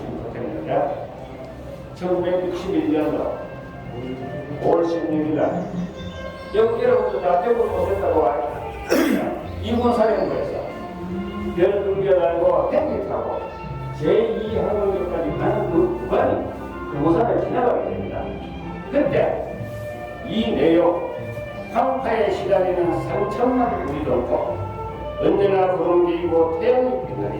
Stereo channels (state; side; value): identical; both; correlation 1.00